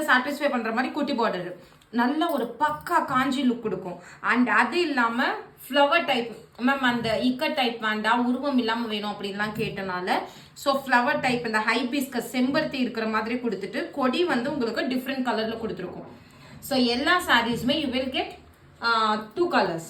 சாட்டிஸ்ஃபை பண்ணுற மாதிரி குட்டி பார்டர் நல்ல ஒரு பக்கா காஞ்சி லுக் கொடுக்கும். அண்ட் அது இல்லாமல் ஃப்ளவர் டைப், மேம் அந்த இக்கட் டைப் வேண்டாம், உருவம் இல்லாமல் வேணும் அப்படின்லாம் கேட்டனால ஸோ ஃப்ளவர் டைப் இந்த ஹைபிஸ்கஸ் செம்பருத்தி இருக்கிற மாதிரி கொடுத்துட்டு கொடி வந்து உங்களுக்கு டிஃப்ரெண்ட் கலரில் கொடுத்துருக்கோம். ஸோ எல்லா சாரீஸுமே you will get 2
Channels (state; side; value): identical; both; correlation 1.00